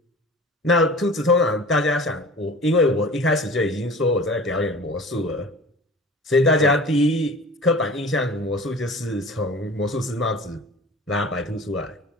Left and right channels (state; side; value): normal; both; correlation 0.41